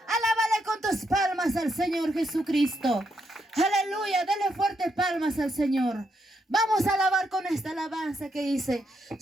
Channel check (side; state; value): both; normal; correlation 0.79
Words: Alábale con tus palmas al Señor Jesucristo. Aleluya, dale fuerte palmas al Señor. Vamos a alabar con esta alabanza que dice: